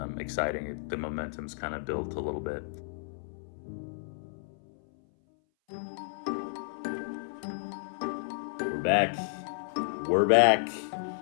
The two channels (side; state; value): right; silent; 57 dB below the other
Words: exciting. The momentum's kind of built a little bit. We're back.